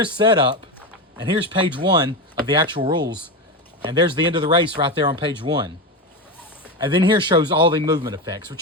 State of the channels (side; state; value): both; normal; correlation 0.17